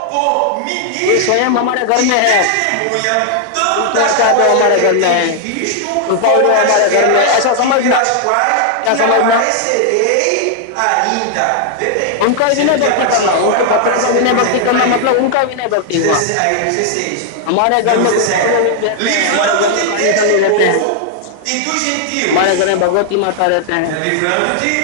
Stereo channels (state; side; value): different; both; correlation 0.00